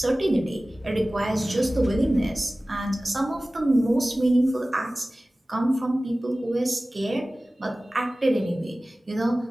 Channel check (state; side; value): normal; both; correlation 0.97